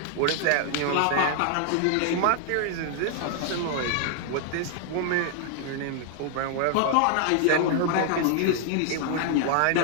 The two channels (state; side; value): different; both; correlation 0.00